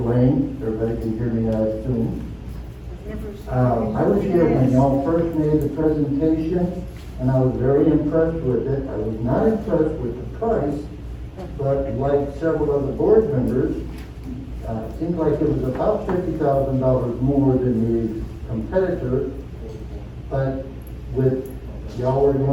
Lane, everybody can hear me, I assume. I was here when y'all first made the presentation, and I was very impressed with it. I was not impressed with the price, but like several other board members, it seemed like it was about $50,000 more than the competitor, but with y'all were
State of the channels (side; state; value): both; identical; correlation 1.00